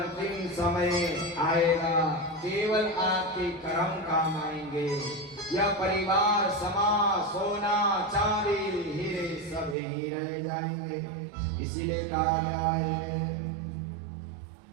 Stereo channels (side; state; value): left; drops out; at 9.8 s